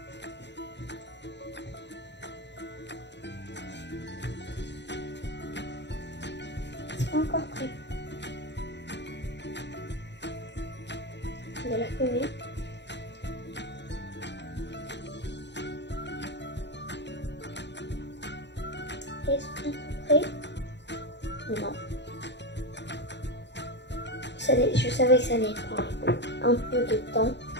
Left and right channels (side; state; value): right; late; 0.51 ms